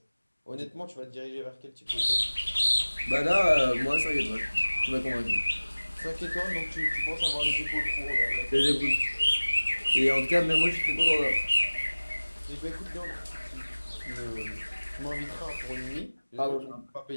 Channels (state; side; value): inverted; both; correlation -1.00